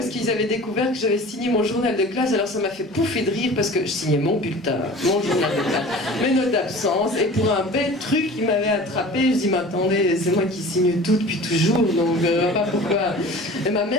qu'ils avaient découvert que j'avais signé mon journal de classe. Alors ça m'a fait pouffer de rire parce que je signais mon bulletin, mon journal de classe, mes notes d'absence, et pour un bête truc, ils m'avaient attrapé. Je dis, mais attendez, c'est moi qui signe tout depuis toujours, donc pas pourquoi. Et ma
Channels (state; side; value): normal; both; correlation 0.41